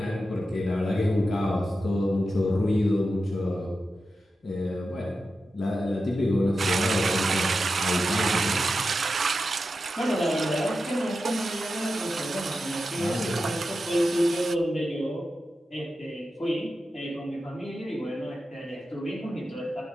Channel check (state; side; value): normal; both; correlation 0.91